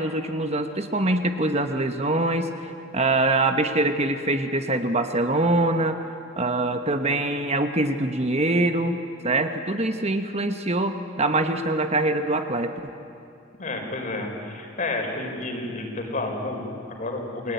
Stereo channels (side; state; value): both; normal; correlation 0.28